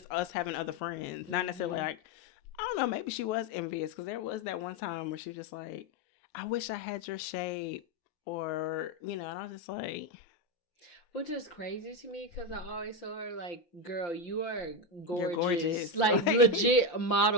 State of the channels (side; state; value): right; late; 5.8 ms